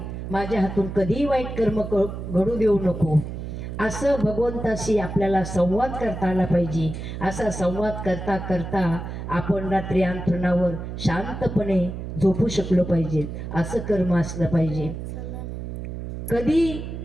माझ्या हातून कधीही वाईट कर्म घडू देऊ नको. असं भगवंताशी आपल्याला संवाद करता आला पाहिजे. असा संवाद करता करता आपण रात्री अंथरुणावर शांतपणे झोपू शकलो पाहिजे. असं कर्म असलं पाहिजे. कधी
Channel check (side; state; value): right; noise; hum, 7 dB below the sound